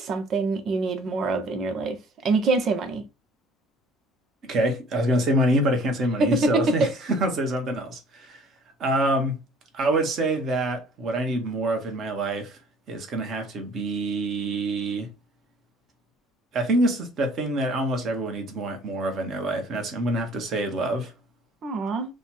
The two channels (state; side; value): normal; both; correlation 0.53